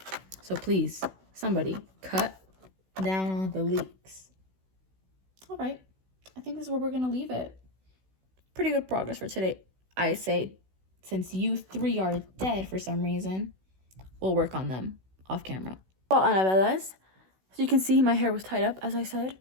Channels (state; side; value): late; left; 16 ms